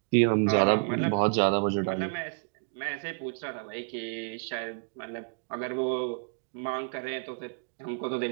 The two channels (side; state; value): left; silent; digital silence